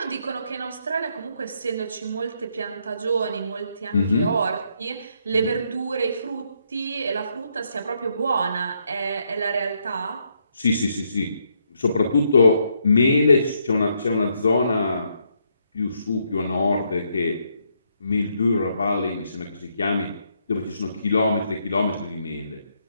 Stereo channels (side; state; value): both; inverted; correlation -0.75